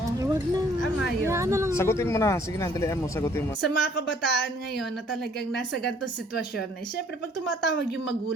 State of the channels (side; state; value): both; normal; correlation 0.60